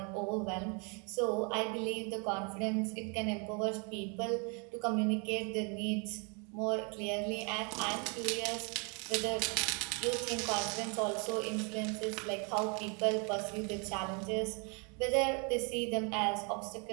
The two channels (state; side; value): quieter; left; 34.9 dB